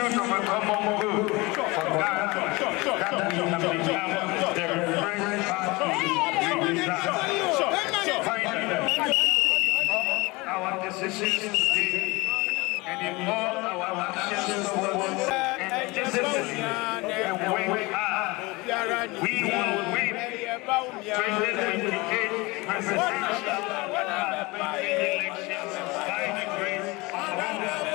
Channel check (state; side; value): quieter; right; 23.8 dB